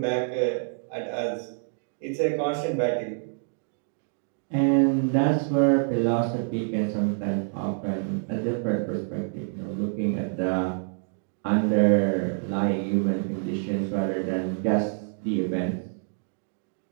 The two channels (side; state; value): left; silent; 60 dB below the other